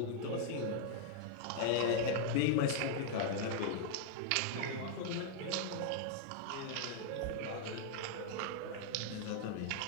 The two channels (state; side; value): different; both; correlation 0.00